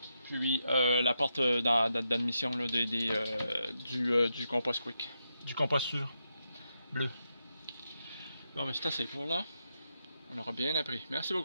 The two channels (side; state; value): both; inverted; correlation -0.84